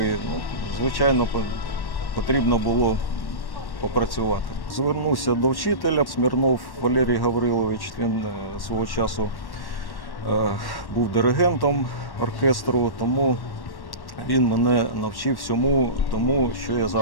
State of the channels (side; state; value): right; late; 1.1 ms